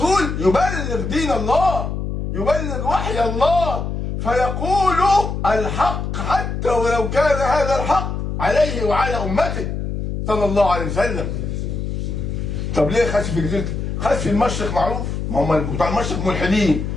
يبلغ دين الله، يبلغ وحي الله، فيقول الحق حتى ولو كان هذا الحق عليه وعلى أمته صلى الله عليه وسلم. طب ليه خسف في جزيرة؟ خسف في المشرق معروف، ما هم بتوع المشرق ملحدين،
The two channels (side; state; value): left; noise; hum, 3 dB below the sound